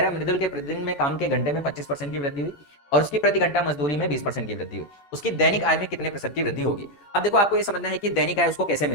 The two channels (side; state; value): right; late; 14 ms